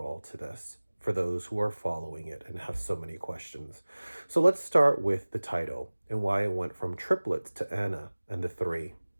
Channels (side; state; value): both; inverted; correlation -1.00